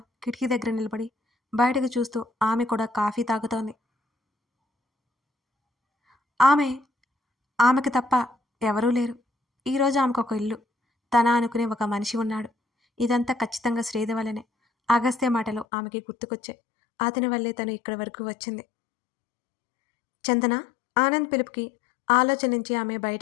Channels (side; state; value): right; drops out; at 15.7 s